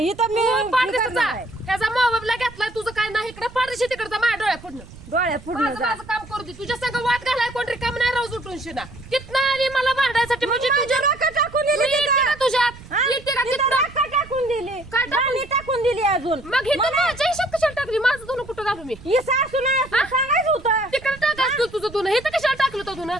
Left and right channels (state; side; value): noise; right; rumble, 18 dB below the sound